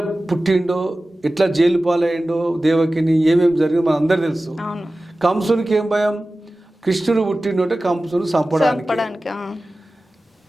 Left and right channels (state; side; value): normal; both; correlation 0.96